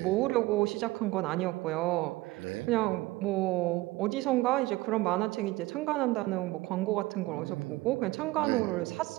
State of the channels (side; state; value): left; quieter; 19.8 dB